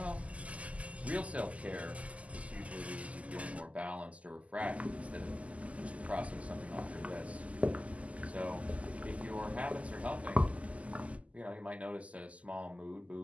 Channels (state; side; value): late; left; 0.067 ms